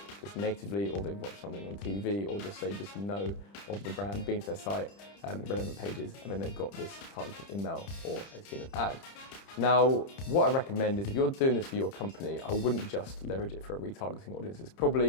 just natively, or they've watched something on TV, or just they just know of the brand, been to their site, relevant pages, and then they've got this targeted email or they've seen an ad. Now, what I recommend is if you're doing this for your company, I wouldn't just leverage it for a retargeting audience. It's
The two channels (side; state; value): right; late; 30 ms